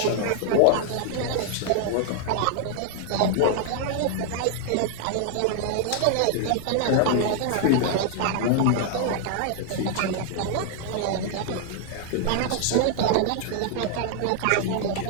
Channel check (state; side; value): different; both; correlation 0.00